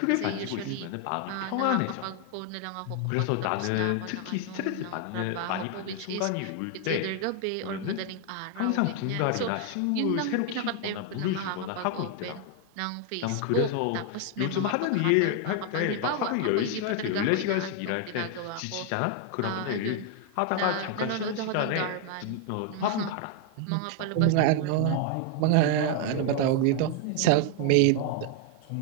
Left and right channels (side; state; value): both; different; correlation 0.00